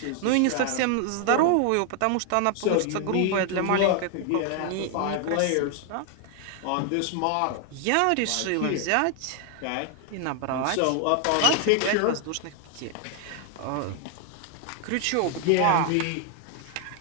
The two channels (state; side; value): different; both; correlation 0.00